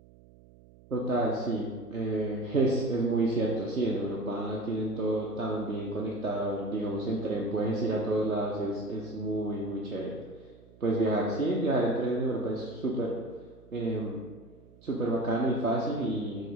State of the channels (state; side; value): noise; right; hum, 24 dB below the sound